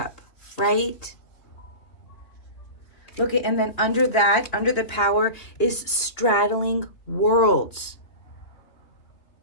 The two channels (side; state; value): right; late; 3.3 ms